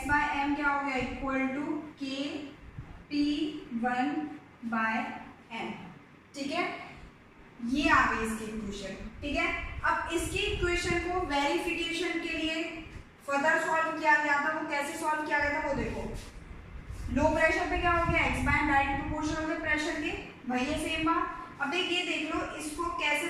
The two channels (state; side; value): identical; both; correlation 1.00